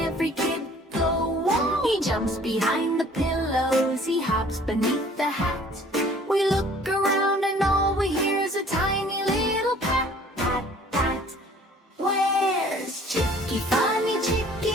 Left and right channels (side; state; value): both; normal; correlation 0.54